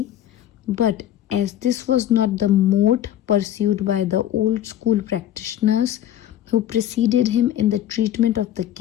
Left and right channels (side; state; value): right; quieter; 11.5 dB